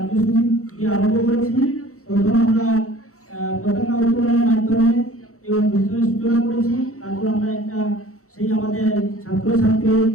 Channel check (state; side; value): late; right; 0.64 ms